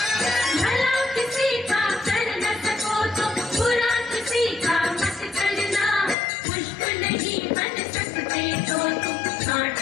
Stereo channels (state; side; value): drops out; right; at 6.2 s